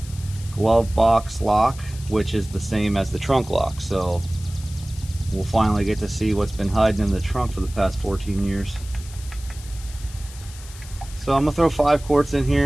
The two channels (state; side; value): noise; left; hiss, 18 dB below the sound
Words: glove box lock, which is the same as the trunk lock. So we'll finally get to see what's been hiding in the trunk for the past 14 years. So I'm gonna throw 5 quarts in